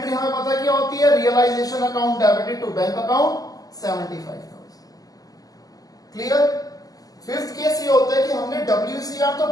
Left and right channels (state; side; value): late; right; 0.17 ms